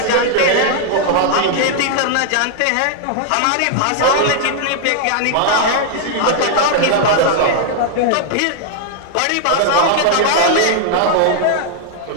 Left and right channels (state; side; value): different; both; correlation -0.01